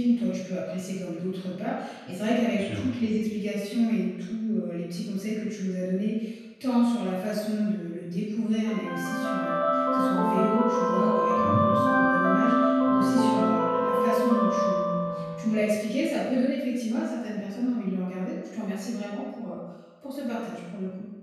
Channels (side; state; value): both; identical; correlation 1.00